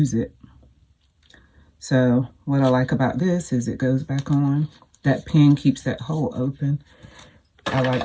it. So what I like about this is it goes back on. That pin keeps that hole open. I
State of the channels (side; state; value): both; identical; correlation 1.00